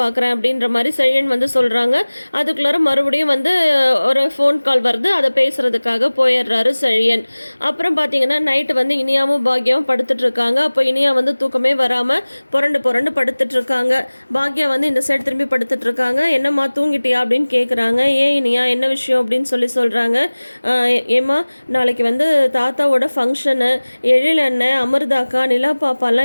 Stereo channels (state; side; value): inverted; both; correlation -1.00